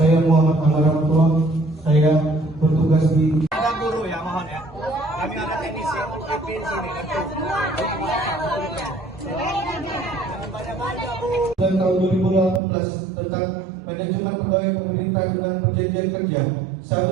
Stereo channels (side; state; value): left; drops out; at 12.6 s